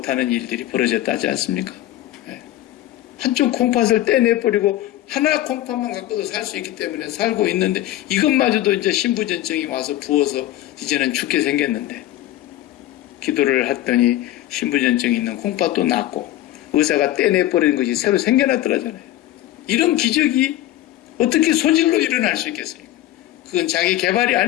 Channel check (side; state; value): right; quieter; 14.5 dB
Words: 일들이 벌어졌다 하지 않습니까? 네. 한쪽 콩팥을 떼내버리고 하나 콩팥만 갖고도 살 수 있기 때문에 살고 있는데 이것마저도 이제 신부전증이 와서 부어서 이제는 죽게 생겼는데 기도를 했더니 신부전증이 있는 콩팥도 낫고 의사가 떼내버리는 것이 새로 생겨났더라잖아요. 이런 기적이 어떻게 소질로 일어날 수 있겠습니까? 그건 자기 개발이